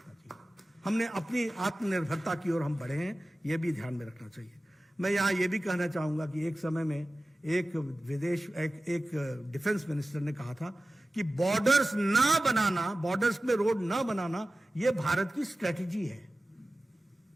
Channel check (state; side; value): normal; both; correlation 0.95